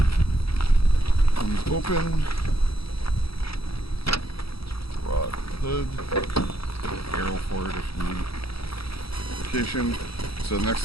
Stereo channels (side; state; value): right; late; 0.76 ms